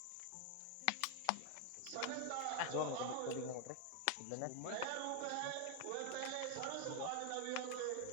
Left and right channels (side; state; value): both; different; correlation 0.00